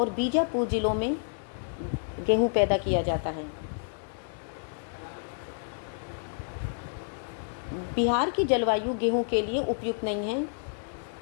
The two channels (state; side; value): silent; right; digital silence